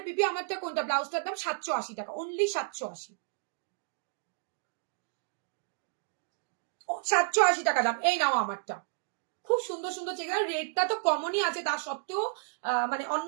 পিপি, আমারটা কোনটা? ব্লাউজটার দাম 780 টাকা, অনলি 780, 780 টাকা দাম। এই নাও আমারটা, খুব সুন্দর সুন্দর চেক। রেটটা তো কমনই আছে, তা সত্ত্বেও মানে অন্য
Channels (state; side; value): silent; left; digital silence